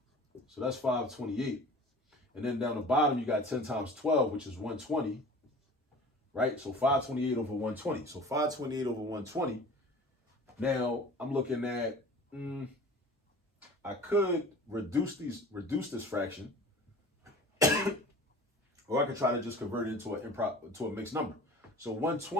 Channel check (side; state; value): both; normal; correlation 0.42